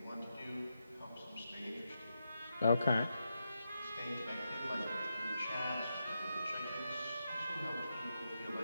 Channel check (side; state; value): both; inverted; correlation -0.86